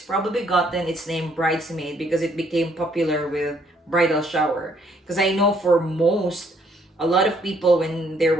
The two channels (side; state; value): both; normal; correlation 0.67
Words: probably gotten its name Bridesmaid because it became popular with bridal shower. Because I know for a lot of people, when they